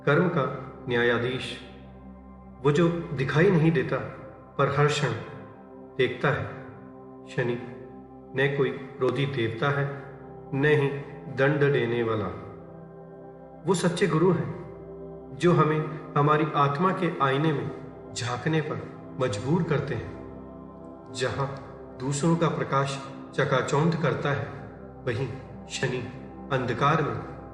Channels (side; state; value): both; identical; correlation 1.00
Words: कर्म का न्यायाधीश, वो जो दिखाई नहीं देता पर हर क्षण देखता है। शनि न कोई क्रोधी देवता है, न ही दंड देने वाला। वो सच्चे गुरु हैं जो हमें हमारी आत्मा के आईने में झांकने पर मजबूर करते हैं। जहां दूसरों का प्रकाश चकाचौंध करता है, वहीं शनि अंधकार में